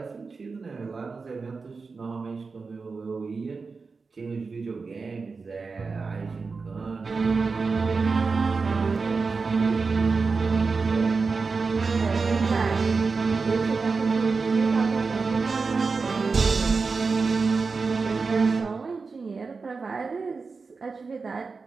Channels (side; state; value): left; quieter; 4.5 dB